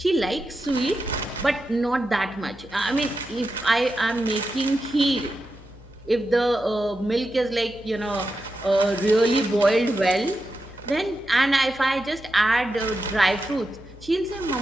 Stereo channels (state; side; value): normal; both; correlation 0.89